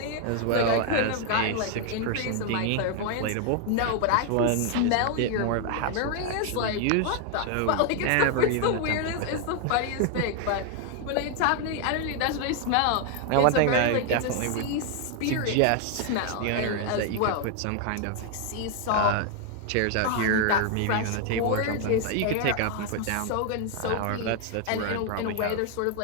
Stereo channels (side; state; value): both; different; correlation 0.00